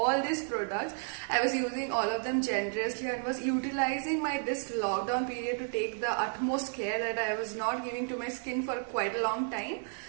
these products. I was using all of them generously and was utilizing this lockdown period to take the utmost care that I was not giving to my skin for quite a long time.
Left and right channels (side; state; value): left; silent; 56 dB below the other